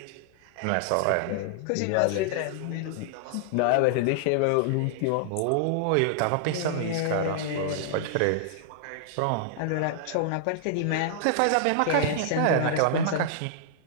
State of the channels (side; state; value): both; different; correlation -0.01